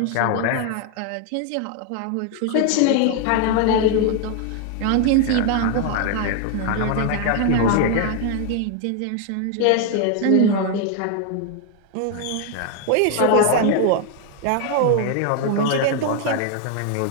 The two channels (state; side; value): different; both; correlation 0.01